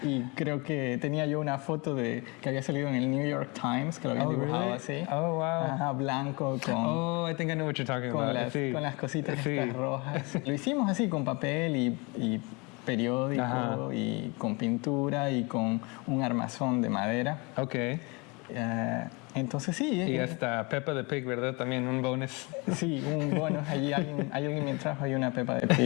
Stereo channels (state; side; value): quieter; right; 28.2 dB